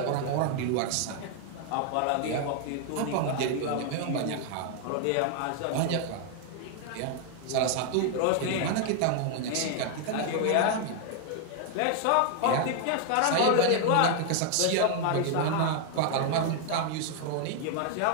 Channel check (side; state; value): both; different; correlation 0.00